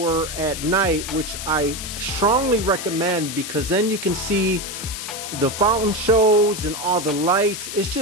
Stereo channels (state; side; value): noise; left; hiss, 8 dB below the sound